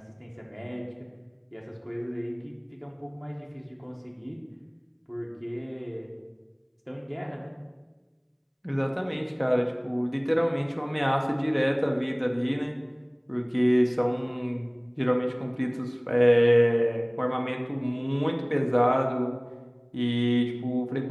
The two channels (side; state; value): both; identical; correlation 1.00